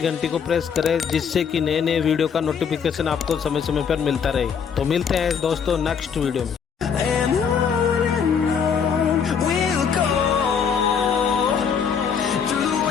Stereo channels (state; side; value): quieter; right; 6.8 dB